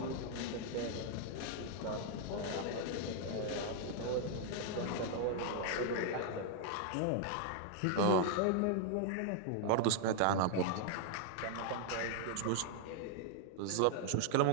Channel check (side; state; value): both; different; correlation 0.00